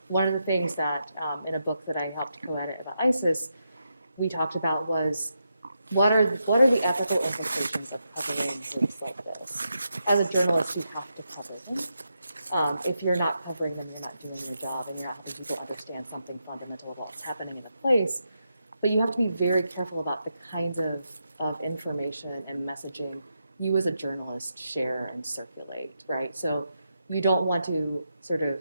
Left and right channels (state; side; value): inverted; both; correlation -0.85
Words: One of the things that in a book that I helped co-edit about ISIS, we talked about was what are the ethical implications of covering groups like this? As a journalist, you have to cover them. If you're not covering them, you're not doing your job, and you're not helping people understand something fundamental about what's happening in a place. But you have to be very careful about the kinds of information and messaging you as a journalist share and circulate, right? So you don't want to sort of